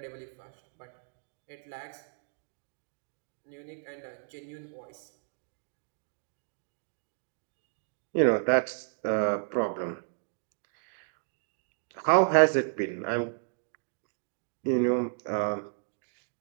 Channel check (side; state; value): left; silent; digital silence